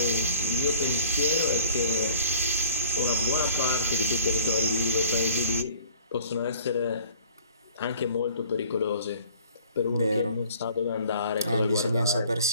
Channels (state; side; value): inverted; both; correlation -0.49